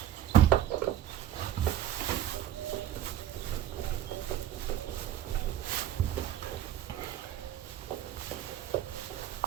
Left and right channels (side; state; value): left; quieter; 11.9 dB